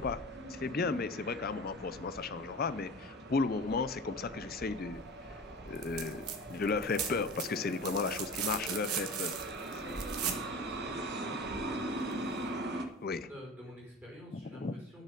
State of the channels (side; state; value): both; normal; correlation 0.35